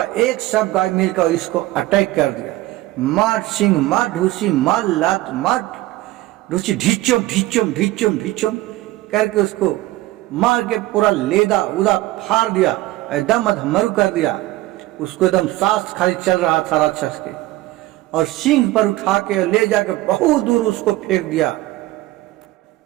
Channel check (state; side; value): quieter; left; 17.6 dB